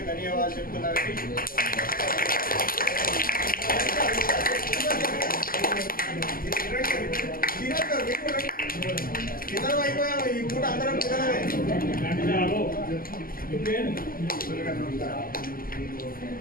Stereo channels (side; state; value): right; late; 0.42 ms